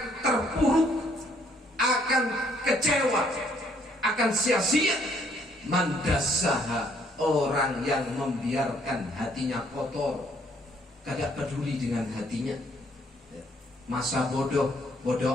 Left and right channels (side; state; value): both; normal; correlation 0.66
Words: terpuruk, akan kecewa, akan sia-sia man dassaha, orang yang membiarkan hatinya kotor, tidak peduli dengan hatinya, masa bodoh